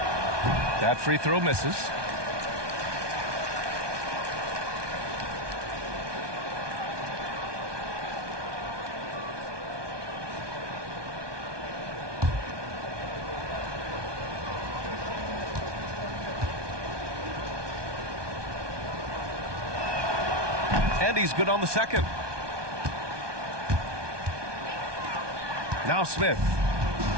That free throw misses. And he's good on the second. Now Smith.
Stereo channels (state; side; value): late; left; 1.2 ms